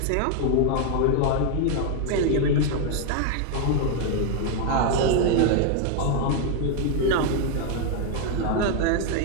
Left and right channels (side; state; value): both; different; correlation 0.00